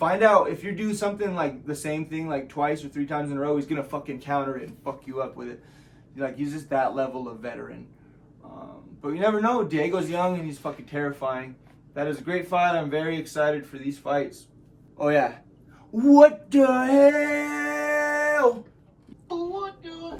out if you do something like the same thing like 2 or 3 times in a row, he's going to fucking counter it and fuck you up with it. Like, he's just that level of veteran. But you never know. Diego's young and he's fucking terrifying. That is a great fight. I'm very excited for these fights. Oh, yeah. What the hell? What the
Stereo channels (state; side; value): identical; both; correlation 1.00